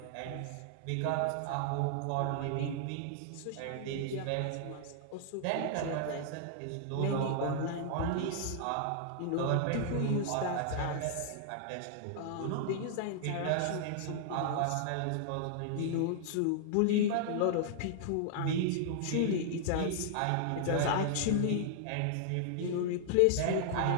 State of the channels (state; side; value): different; both; correlation -0.01